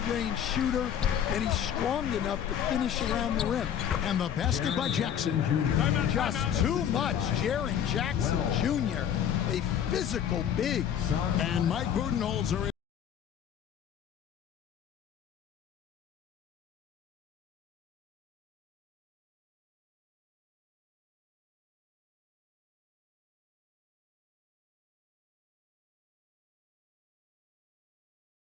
shooter, and he's strong enough to finish around the rim. And the basket by Jackson. Just too much. Jaren Jackson Jr., a physical big. And Mike Budenholzer.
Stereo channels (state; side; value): quieter; right; 9.2 dB